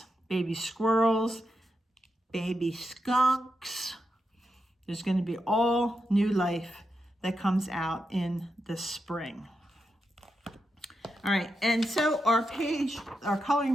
baby squirrels, baby skunks. There's going to be all new life that comes out in the spring. All right, and so our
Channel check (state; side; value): normal; both; correlation 0.87